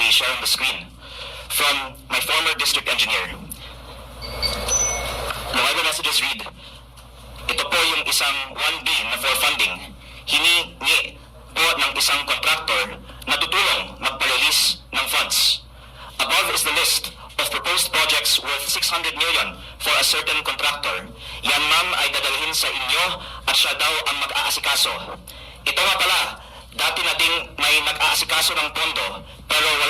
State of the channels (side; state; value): both; identical; correlation 1.00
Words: share on the screen from my former district engineer. The Viber messages read, ito po yung isang 1B na for funding, hiningi po ng isang contractor na tutulong magpa-release ng funds. Above is the list of proposed projects worth 600 million for a certain contractor. Yan ma'am ay dadalhin sa inyo at siya daw ang mag-aasikaso. Ito nga pala, dati na ding may nag-aasikaso ng pondo pero